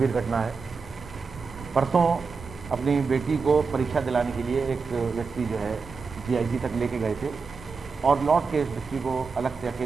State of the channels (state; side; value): quieter; left; 4.9 dB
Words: घटना है। परसों अपनी बेटी को परीक्षा दिलाने के लिए एक व्यक्ति जो है GIC तक लेके गए थे और लौट के इस व्यक्ति को अलग से